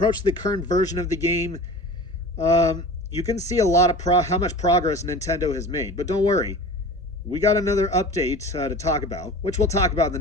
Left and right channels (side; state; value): both; normal; correlation 0.37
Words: current version of the game, you can see a lot of how much progress Nintendo has made. But don't worry, we got another update to talk about, which we'll talk about in the